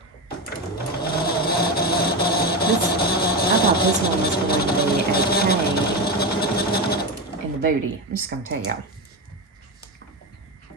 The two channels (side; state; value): both; normal; correlation 0.17